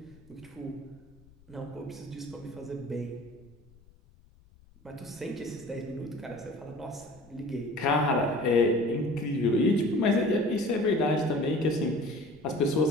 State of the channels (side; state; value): left; noise; rumble, 27 dB below the sound